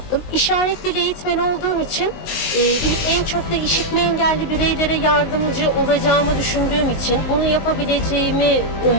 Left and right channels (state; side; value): late; right; 19 ms